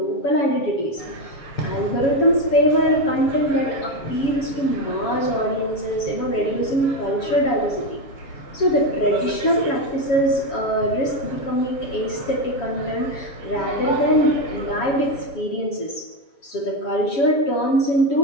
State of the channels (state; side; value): late; right; 7.2 ms